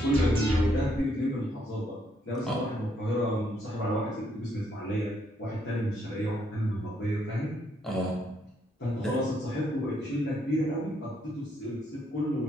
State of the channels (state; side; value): normal; both; correlation 0.73